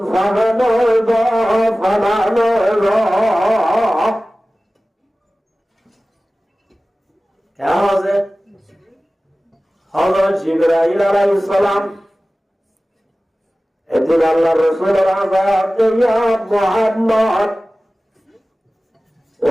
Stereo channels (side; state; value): both; normal; correlation 0.97